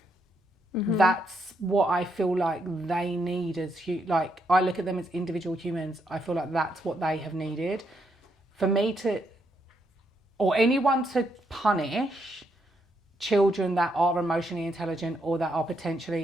that's what I feel like they need as like I look at them as individual humans. I feel like that's what they have needed. For me to, or anyone to punish children that are emotionally intelligent or that are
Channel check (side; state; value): both; normal; correlation 0.77